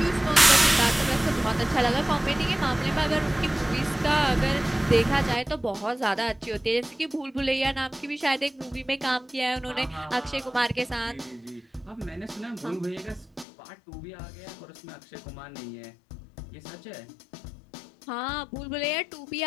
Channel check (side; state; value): right; drops out; at 13.5 s